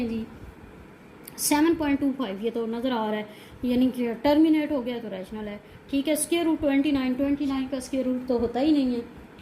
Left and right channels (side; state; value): both; identical; correlation 1.00